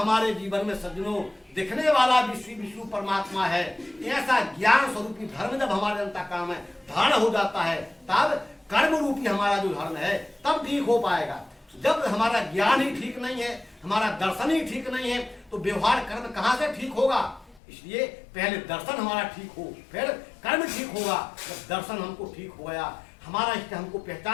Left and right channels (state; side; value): drops out; right; at 17.6 s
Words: जीवन में सज्जनों दिखने वाला विश्व परमात्मा है, ऐसा ज्ञान स्वरूपी धर्म जब हमारे अंतःकरण में धारण हो जाता है, तब कर्म रूपी हमारा जो धर्म है तब ठीक हो पाएगा। जब हमारा ज्ञान ही ठीक नहीं है, हमारा दर्शन ही ठीक नहीं है, तो व्यवहार कर्म कहाँ से ठीक होगा? इसलिए पहले दर्शन हमारा ठीक हो, फिर कर्म ठीक होगा। जब दर्शन हमको ठीक हो गया, हमारा इष्ट हमको